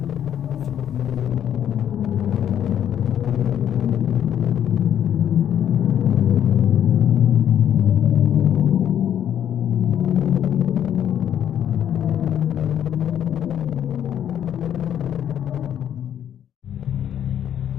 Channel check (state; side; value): quieter; right; 9.9 dB